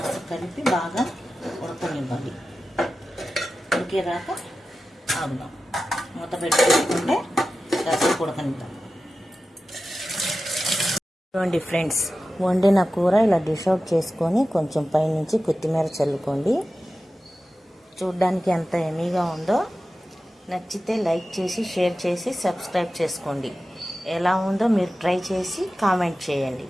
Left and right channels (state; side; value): normal; both; correlation 0.94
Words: కలిపి బాగా ఉడకనివ్వాలి. ఉడికేదాకా ఆగుదాం. మూత పెట్టుకుంటే కాసేపు ఉడకనిద్దాం. చూడండి ఫ్రెండ్స్, వండిన కూర ఇలా డిష్ అవుట్ చేసుకొని కొంచెం పైనుంచి కొత్తిమీర చల్లుకోండి. చూడ్డానికి ఎంత ఎమీగా ఉందో. నచ్చితే లైక్ చేసి, షేర్ చేసి, సబ్స్క్రైబ్ చేసుకోండి. ఎలా ఉందో మీరు ట్రై చేసి కామెంట్ చేయండి.